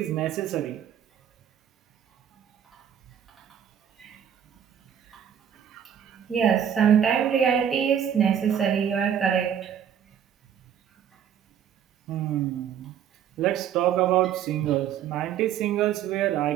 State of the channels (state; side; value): quieter; left; 9.1 dB